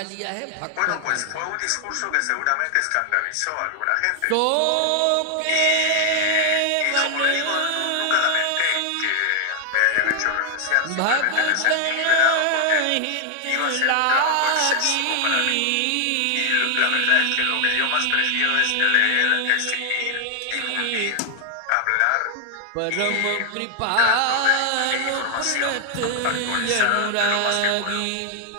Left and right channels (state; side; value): different; both; correlation 0.00